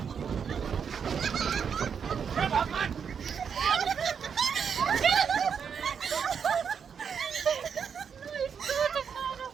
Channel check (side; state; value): left; quieter; 6.9 dB